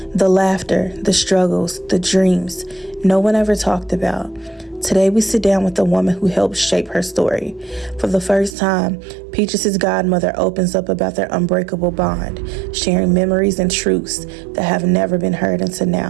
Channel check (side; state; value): left; drops out; at 8.6 s